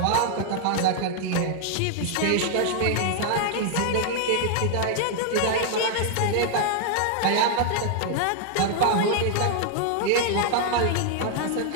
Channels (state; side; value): different; both; correlation 0.00